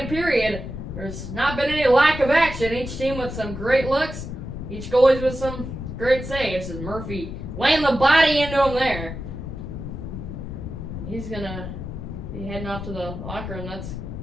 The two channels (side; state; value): left; noise; rumble, 8 dB below the sound